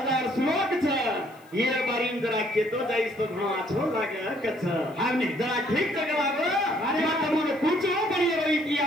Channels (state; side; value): noise; left; hiss, 30 dB below the sound